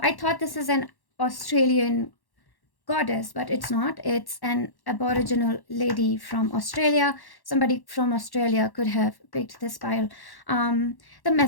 I thought this is an Australian goddess, but it's not. It's an aboriginal lady from Australia. Somebody from Australia could have picked this pile. The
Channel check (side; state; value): right; late; 1.1 ms